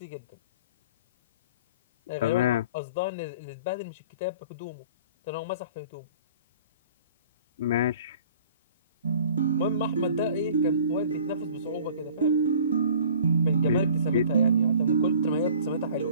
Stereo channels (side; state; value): both; inverted; correlation -0.48